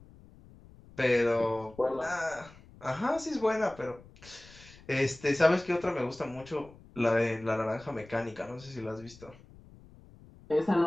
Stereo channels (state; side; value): noise; left; rumble, 22 dB below the sound